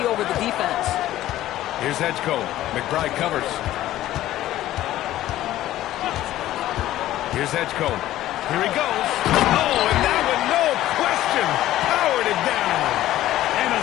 over the defense. Here's Edgecombe. McBride covers. Here's Edgecombe. Here he goes. Oh, and that one, no question, powered it down. And a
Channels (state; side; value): quieter; right; 14.2 dB